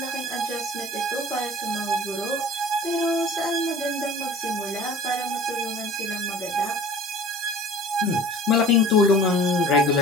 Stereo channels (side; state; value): both; normal; correlation 0.44